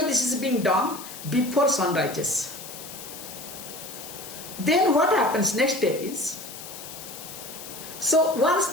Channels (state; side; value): noise; left; hiss, 12 dB below the sound